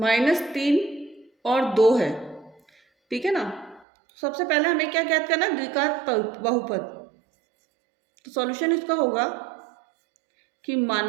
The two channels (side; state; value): left; drops out; at 3.9 s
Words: और 2 है। ठीक है ना। सबसे पहले हमें क्या ज्ञात करना है, द्विघात बहुपद। तो सॉल्यूशन इसका होगा कि